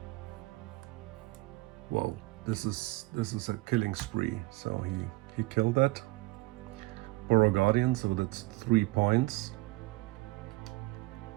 Wow, this is a killing spree. So he killed that Burrow Guardian, so that's 3 points.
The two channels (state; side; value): quieter; left; 21.9 dB